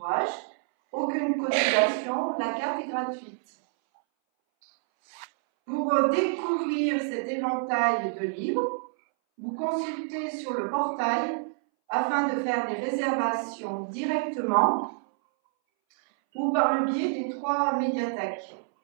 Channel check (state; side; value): silent; left; 60 dB below the other